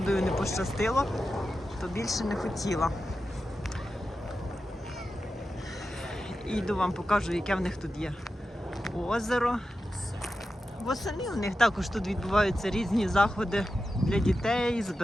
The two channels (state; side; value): normal; both; correlation 0.91